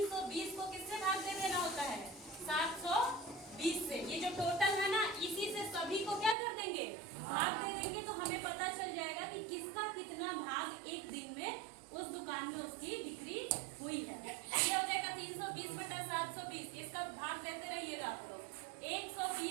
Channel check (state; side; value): drops out; left; at 6.4 s